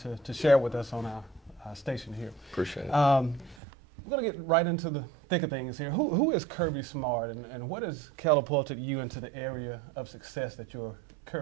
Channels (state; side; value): drops out; left; at 3.6 s